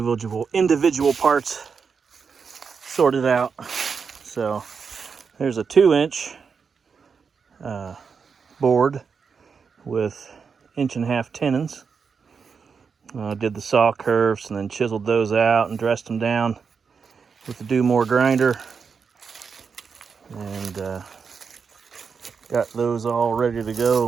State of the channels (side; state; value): left; quieter; 5.8 dB